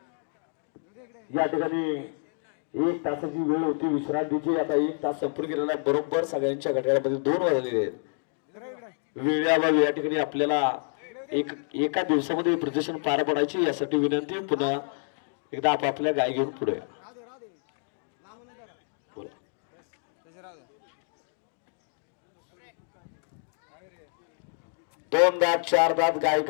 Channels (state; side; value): silent; right; 59 dB below the other